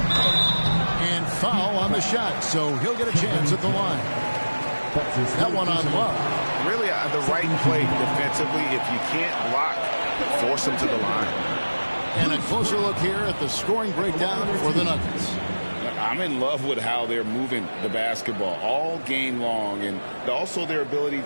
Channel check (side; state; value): both; inverted; correlation -1.00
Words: And foul on the shot, so he'll get a chance at the line. That one on Love. Really the right play defensively. If you can't block, force him to the line. And a closer look here at the scoring breakdown for the Nuggets. I'm in love with how they're moving the basketball all game long, and also their ability